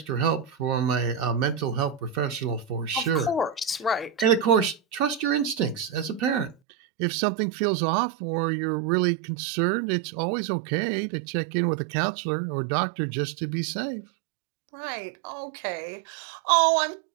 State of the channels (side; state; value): left; drops out; at 6.6 s